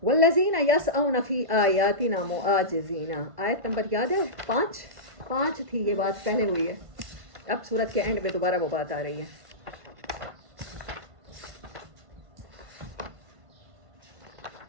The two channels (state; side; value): late; left; 1.5 ms